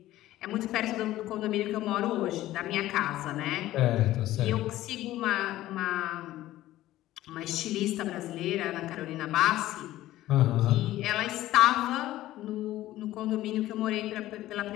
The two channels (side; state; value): right; quieter; 15.1 dB